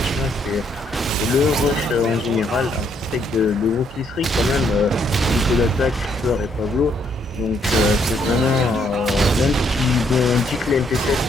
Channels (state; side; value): normal; both; correlation 0.71